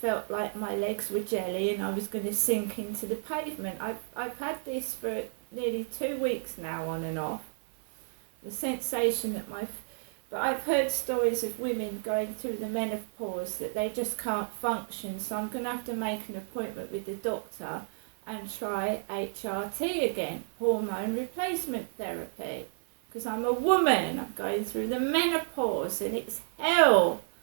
felt like my legs were jelly and I was going to sink into the pavement. I've had this for nearly 2 weeks now, on and off. The sensation that but I've heard stories of women going through the menopause that they just can't function. So I'm going to have to make an appointment with the doctor and try HRT again, hormone replacement therapy. Because I'm a woman, I'm going through the menopause, and it's hell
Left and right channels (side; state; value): left; silent; 57 dB below the other